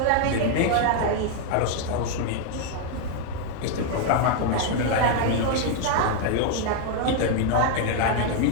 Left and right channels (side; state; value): both; different; correlation 0.00